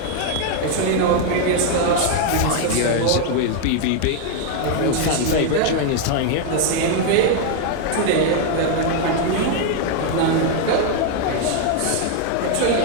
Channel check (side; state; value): both; different; correlation 0.00